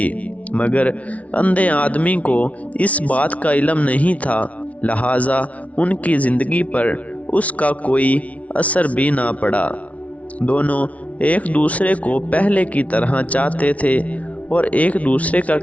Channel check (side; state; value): right; late; 0.066 ms